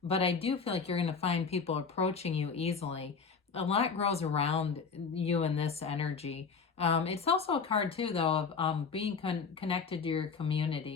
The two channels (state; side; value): quieter; right; 5.5 dB